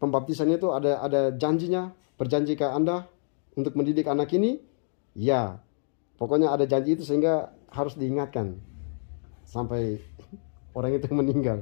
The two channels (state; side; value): silent; right; digital silence